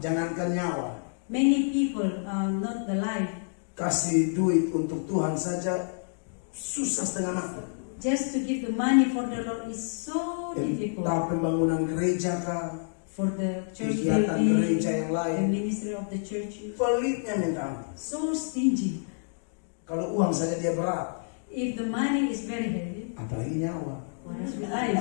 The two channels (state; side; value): silent; right; digital silence